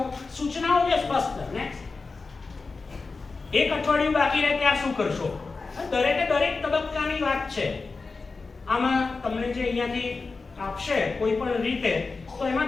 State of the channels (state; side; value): quieter; right; 4.1 dB